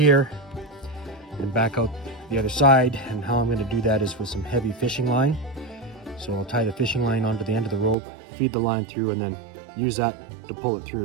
and back out the other side. And how I'm going to do that is with some heavy fishing line. So I'll tie the fishing line onto the end of the rope, feed the line through, and then use that to pull it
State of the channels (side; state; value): left; drops out; at 8.0 s